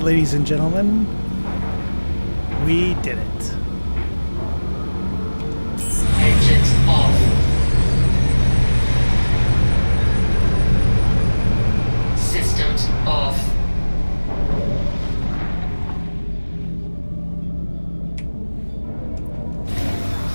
ladies and gentlemen. We did it. Engines off. Systems off.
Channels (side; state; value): both; inverted; correlation -1.00